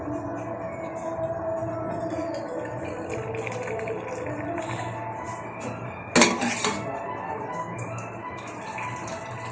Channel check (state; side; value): identical; both; correlation 1.00